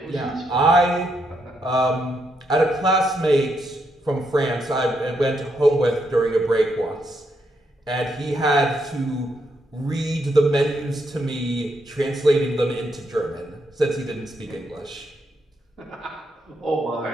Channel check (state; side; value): normal; both; correlation 0.79